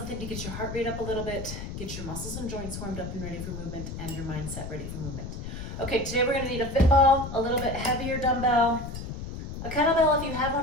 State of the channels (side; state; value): left; noise; rumble, 7 dB below the sound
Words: to get your heart rate up a little bit, get your muscles and joints warmed up and ready for movement, and your mindset ready for movement. Okay, today we're going to need a fit ball, a little bit heavier dumbbell, a kettlebell if you have